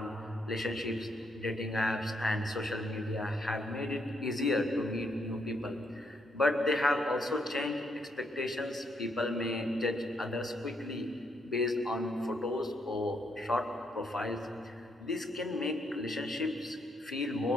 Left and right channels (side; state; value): both; normal; correlation 0.75